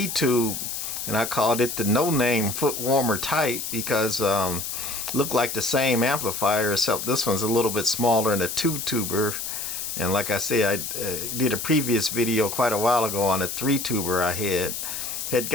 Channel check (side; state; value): left; noise; hiss, 5 dB below the sound